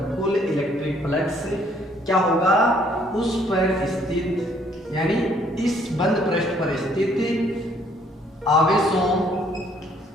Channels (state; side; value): normal; both; correlation 0.64